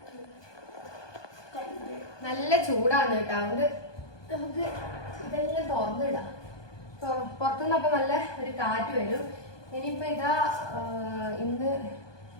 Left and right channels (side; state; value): right; late; 1.2 ms